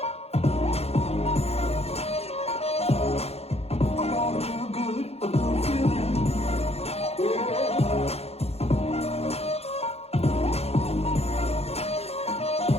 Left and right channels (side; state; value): right; late; 0.30 ms